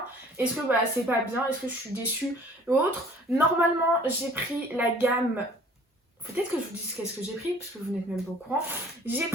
est-ce que c'est pas bien, est-ce que je suis déçue ou autre. Normalement j'ai pris la gamme, peut-être que je vous dise qu'est-ce que j'ai pris, parce que vous n'êtes même pas au courant. J'ai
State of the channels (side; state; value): both; normal; correlation 0.52